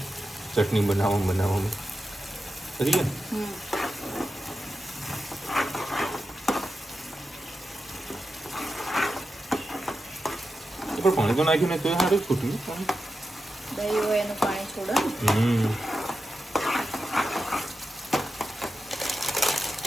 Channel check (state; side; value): normal; both; correlation 0.91